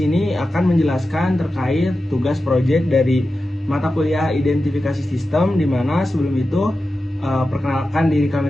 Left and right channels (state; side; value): normal; both; correlation 0.92